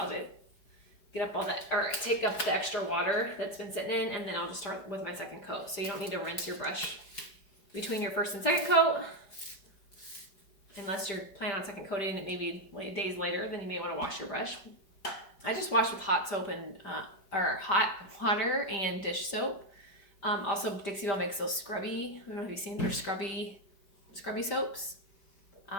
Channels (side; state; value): right; late; 5.1 ms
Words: to get up all that, or take up the extra water that's been sitting in, and then I'll just start with my second coat. So you don't need to rinse your brush between your first and second coat, unless you're planning on second coating it maybe days later, then you may want to wash your brush. I just wash with hot soap and, or hot water and dish soap. Also Dixie Belle makes those scrubby, I don't know if you've seen their scrubby soaps.